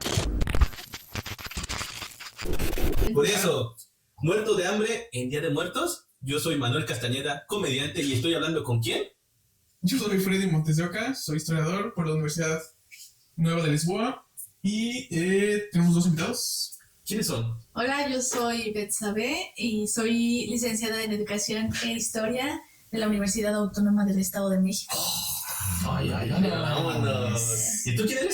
Por eso, muerto de hambre en Día de Muertos, yo soy Manuel Castañeda, comediante, y estoy hablando ¿con quién? Yo soy Freddy Montes de Oca, soy historiador por la Universidad Nueva de Lisboa y tenemos dos invitados. ¿Quiénes son? Hola, yo soy Betsabe y soy licenciada en Educación e Historia de la Universidad Autónoma del Estado de México. Ay, vámonos. ¿Y tú quién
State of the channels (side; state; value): both; identical; correlation 1.00